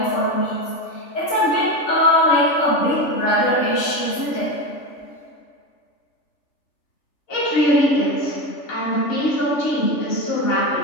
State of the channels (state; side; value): late; right; 3.4 ms